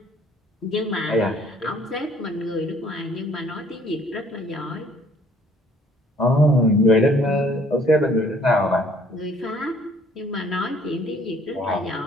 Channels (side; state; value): both; normal; correlation 0.59